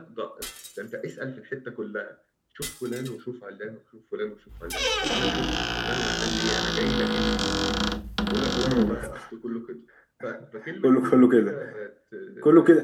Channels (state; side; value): identical; both; correlation 1.00